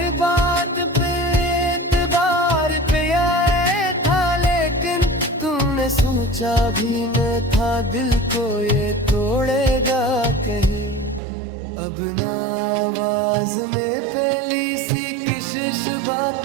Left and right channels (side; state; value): left; drops out; at 11.2 s